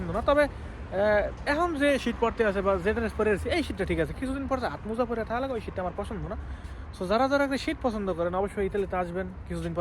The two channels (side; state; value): both; identical; correlation 1.00